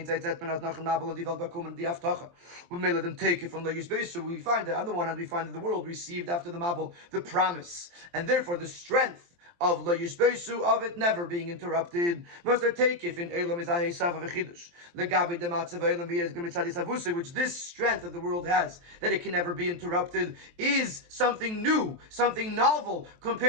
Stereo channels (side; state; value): left; late; 23 ms